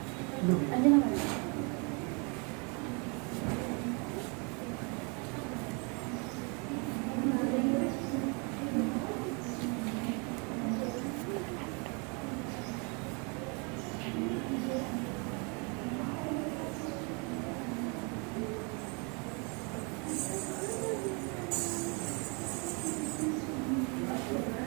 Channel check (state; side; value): quieter; left; 33.4 dB